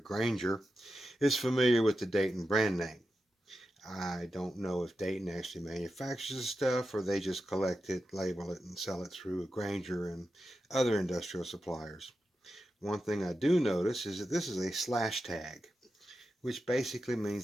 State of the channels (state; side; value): normal; both; correlation 0.90